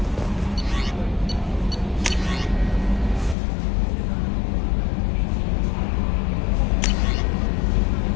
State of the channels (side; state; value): right; drops out; at 3.4 s